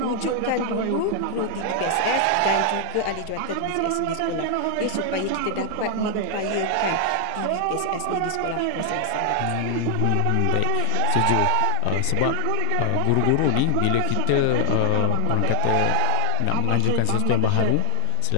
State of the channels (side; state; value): both; different; correlation 0.00